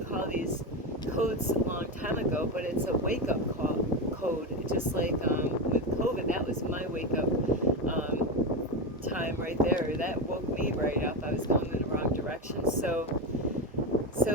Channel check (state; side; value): normal; both; correlation 0.15